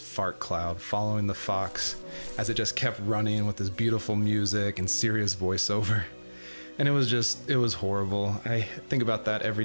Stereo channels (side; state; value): both; inverted; correlation -1.00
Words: cloud following the fox as it just kept running with this beautiful music and serious voiceover. And it was horrible. I think about that every